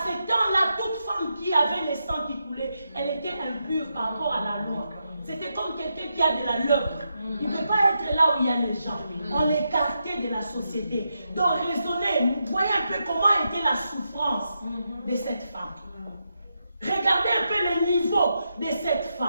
ce temps-là, toute femme qui avait le sang qui coulait, elle était impure par rapport à la loi. C'était comme quelqu'un qui a de la lèpre. Il ne peut pas être là où il y a les gens. On l'écartait de la société. Donc raisonnez, voyez un peu comment était la souffrance de cette femme. Regardez un peu le niveau de cette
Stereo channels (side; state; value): both; inverted; correlation -0.84